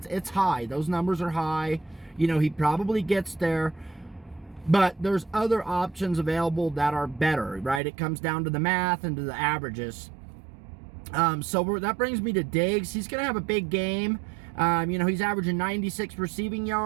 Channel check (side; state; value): left; drops out; at 7.8 s